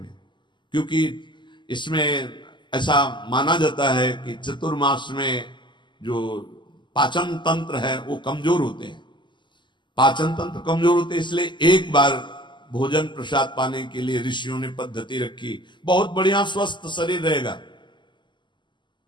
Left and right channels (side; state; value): right; late; 0.22 ms